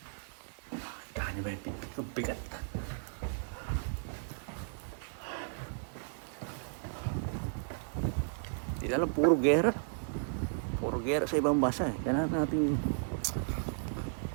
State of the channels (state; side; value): silent; left; digital silence